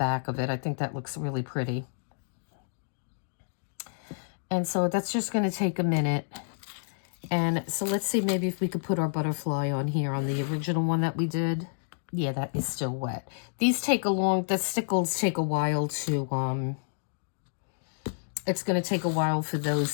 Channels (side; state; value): right; silent; digital silence